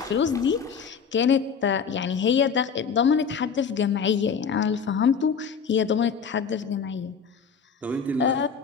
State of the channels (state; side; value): quieter; right; 6.3 dB